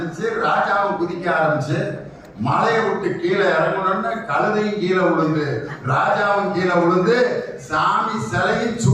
ராஜாவும் குதிக்க ஆரம்பிச்சு. மலையை விட்டு கீழே இறங்கணும்னு கழுதையும் கீழே விழுந்து, ராஜாவும் கீழே விழுந்து, சாமி சிலையும்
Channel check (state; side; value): identical; both; correlation 1.00